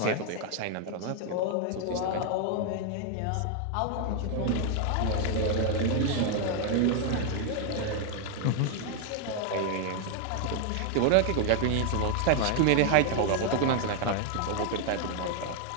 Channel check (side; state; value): both; different; correlation 0.00